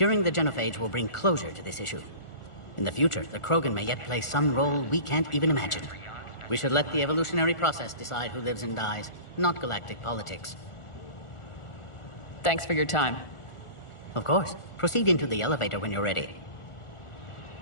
the genophage will bring closure to this issue. In the future, the Krogan may yet play some role we can't even imagine. We should let the evolutionary process decide who lives and dies, not galactic politics. Thanks for your time. Of course. Proceed into the elevator when you're ready.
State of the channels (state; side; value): late; right; 1.4 ms